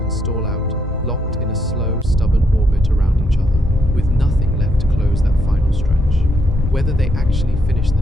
stall out, locked in a slow, stubborn orbit around each other, with nothing left to close that final stretch. Whether they actually finish the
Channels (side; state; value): both; normal; correlation 0.76